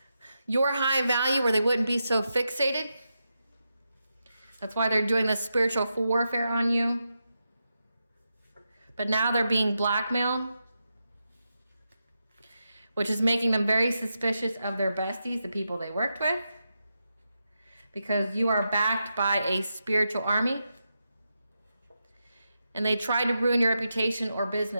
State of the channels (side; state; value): both; inverted; correlation -0.87